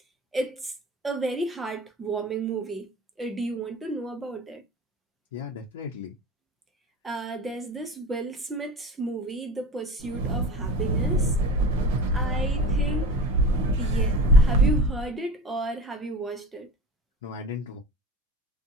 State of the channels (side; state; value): both; normal; correlation 0.34